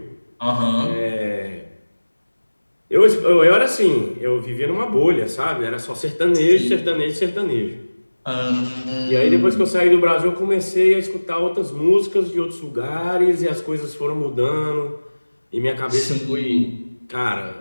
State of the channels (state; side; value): inverted; both; correlation -1.00